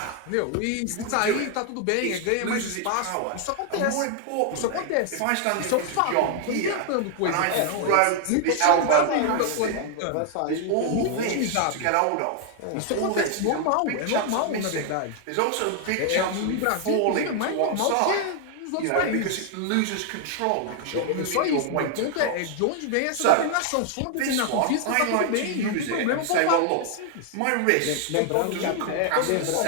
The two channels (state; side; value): different; both; correlation 0.00